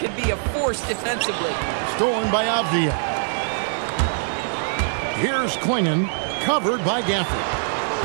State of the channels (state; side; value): silent; left; digital silence